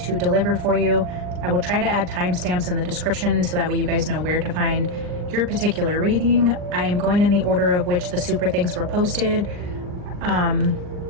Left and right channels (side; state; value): left; late; 40 ms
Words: to deliver for you. I will try to add timestamps in the description so that way you guys know where to find your particular reading. I am going in the order of which the super thanks were posted.